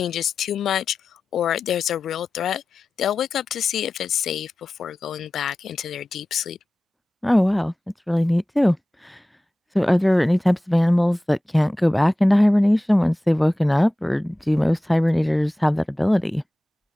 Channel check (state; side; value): normal; both; correlation 0.96